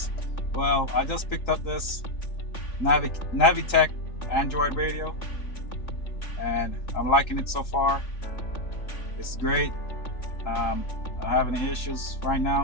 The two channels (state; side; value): late; right; 3.5 ms